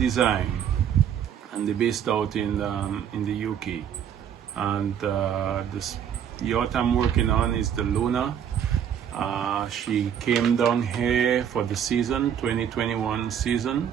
and they're based out in the UK. And this yacht I'm working on is the Luna. She came down here for the season 2021 season.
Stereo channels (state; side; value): quieter; left; 8.9 dB